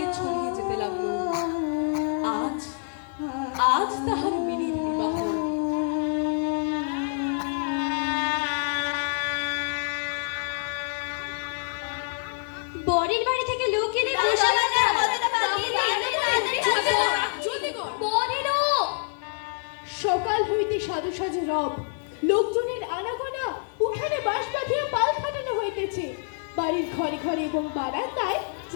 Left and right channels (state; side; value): silent; right; 60 dB below the other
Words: ছড়িয়ে যেতে লাগল। আজ আজ তাহার মিনির বিবাহ। বরের বাড়ি থেকে লোক এলে বসে সকাল হইতে সাজু সাজু রব, লোকজনের আনাগোনা, উঠানে বাঁশ বাঁধিয়া পাল খাটানো হইতেছে। বাড়ির ঘরে ঘরে এবং বারান্দায়